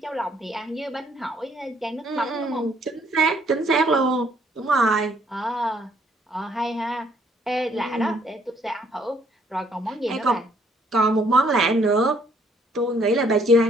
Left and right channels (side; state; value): both; normal; correlation 0.65